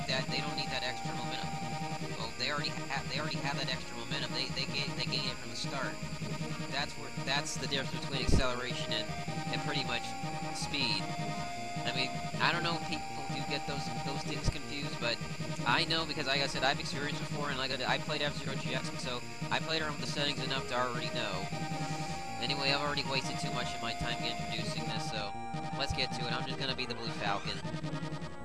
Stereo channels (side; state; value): both; identical; correlation 1.00